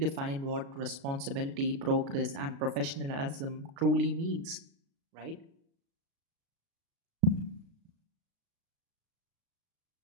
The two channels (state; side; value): late; left; 36 ms